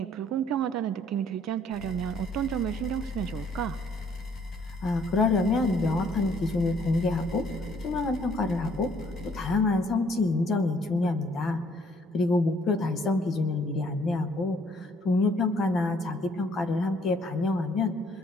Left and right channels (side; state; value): both; normal; correlation 0.63